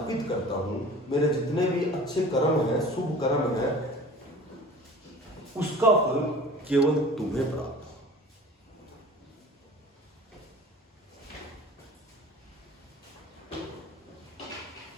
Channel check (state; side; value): normal; both; correlation 0.42